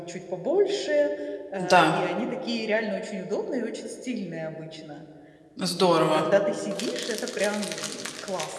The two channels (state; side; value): identical; both; correlation 1.00